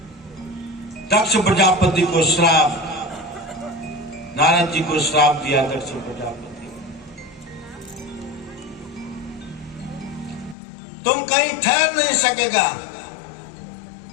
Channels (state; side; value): drops out; right; at 10.6 s